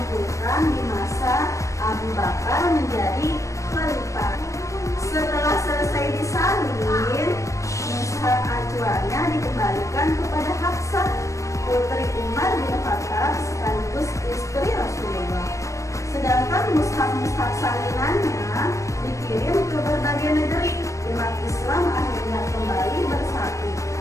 di masa Abu Bakar menjadi khalifah. Setelah selesai disalin, mushaf acuannya dikembalikan kepada Hafsah, putri Umar bin Khattab sekaligus istri Rasulullah. Sedangkan mushaf-mushaf salinannya dikirim ke berbagai negeri. Umat Islam akhirnya kembali bersatu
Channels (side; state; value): right; late; 0.15 ms